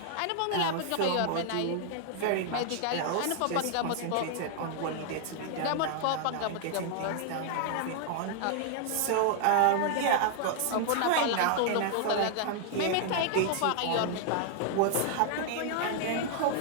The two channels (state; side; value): different; both; correlation 0.00